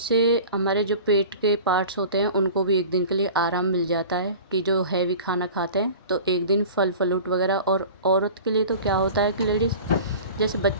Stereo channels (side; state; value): both; inverted; correlation -0.39